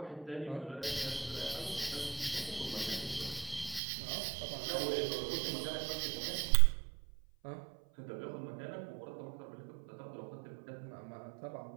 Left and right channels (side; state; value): left; drops out; at 3.8 s